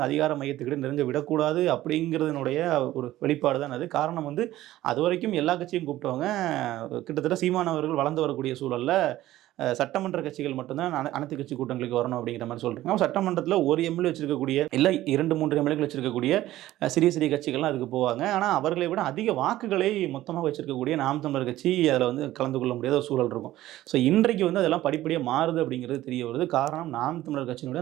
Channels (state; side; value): quieter; left; 15.1 dB